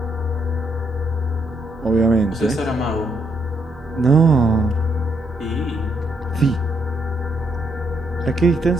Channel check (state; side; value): normal; both; correlation 0.75